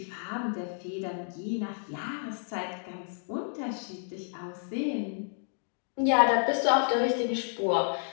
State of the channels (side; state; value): right; silent; digital silence